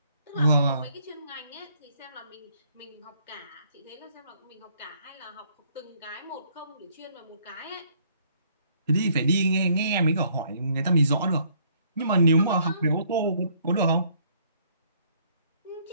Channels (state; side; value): inverted; both; correlation -0.65